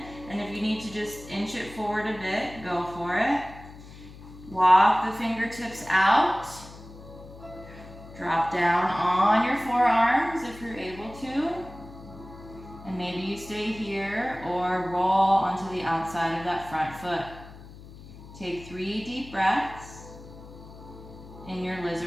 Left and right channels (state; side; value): noise; left; hum, 17 dB below the sound